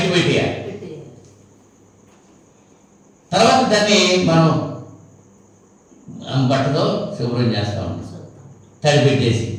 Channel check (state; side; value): identical; both; correlation 1.00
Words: పెట్టేయాలి. తర్వాత దాన్ని మనం బట్టతో శుభ్రం చేస్తూ ఉంటాం, తడి పెట్టేసి.